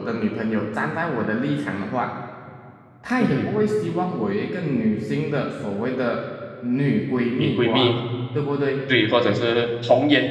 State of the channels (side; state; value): both; identical; correlation 1.00